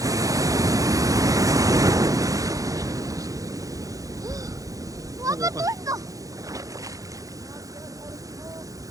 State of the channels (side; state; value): left; late; 0.17 ms